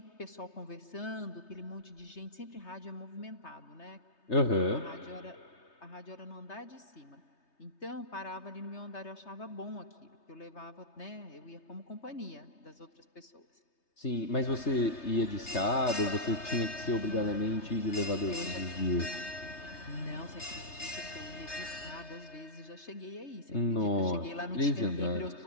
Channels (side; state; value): right; late; 3.3 ms